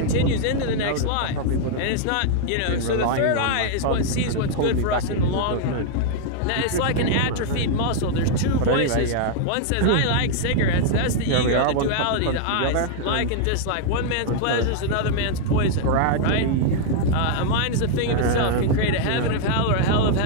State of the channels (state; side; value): different; both; correlation -0.01